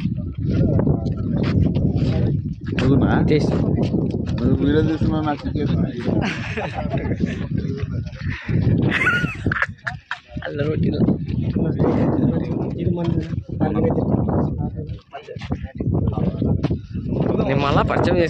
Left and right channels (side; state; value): both; identical; correlation 1.00